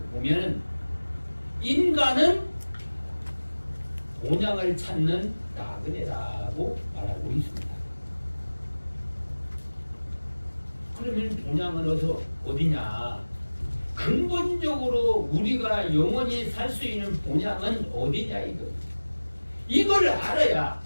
보면 인간은 본향을 찾는 나그네라고 말하고 있습니다. 그러면 본향은 어디냐? 근본적으로 우리가 영원히 살 수 있는 본향은 어디냐 이거. 이걸 알아야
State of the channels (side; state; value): both; inverted; correlation -1.00